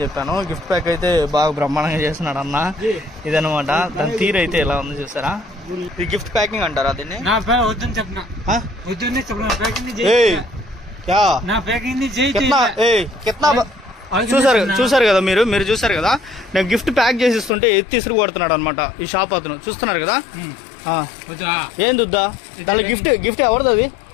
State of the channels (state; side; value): drops out; right; at 17.5 s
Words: చెప్పాను. గిఫ్ట్ ప్యాక్ అయితే బాగా బ్రహ్మాండంగా చేస్తున్నాడు అన్న. ఇదనమాట దాని తీరు అయితే ఎలా ఉంది చూసారా? ఇది గిఫ్ట్ ప్యాకింగ్ అంటారా దీన్ని? చూసారు కదా మీరు చూసారు కదా, నేను గిఫ్ట్ ప్యాక్ చేసి ఇస్తుంటే ఎత్తి ఇసురు కొడుతున్నాడు అనమాట ఈ షాప్ అతను. చూస్తున్నారు కదా. ఏంది వద్దా దాంట్లో గిఫ్ట్ ఎవరిది? అది